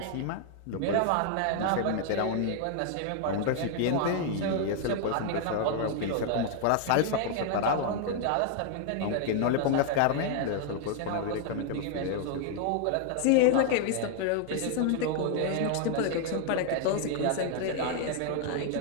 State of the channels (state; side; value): different; both; correlation 0.00